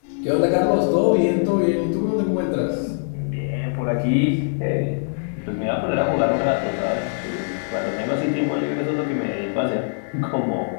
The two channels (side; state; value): right; silent; 64 dB below the other